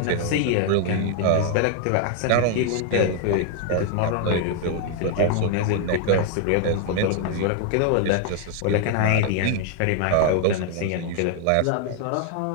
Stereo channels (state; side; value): different; both; correlation 0.00